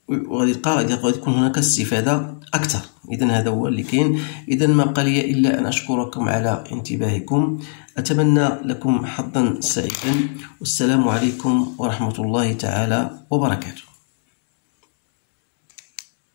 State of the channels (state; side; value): silent; right; digital silence